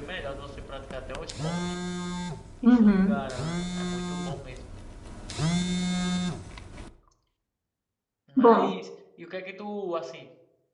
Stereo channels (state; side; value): identical; both; correlation 1.00